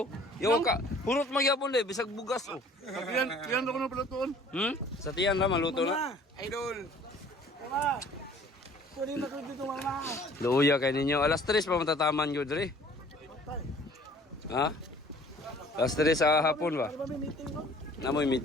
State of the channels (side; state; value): both; normal; correlation 0.53